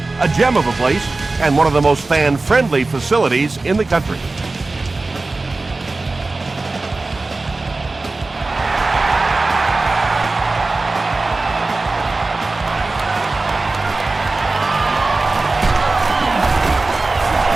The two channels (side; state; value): left; quieter; 3.4 dB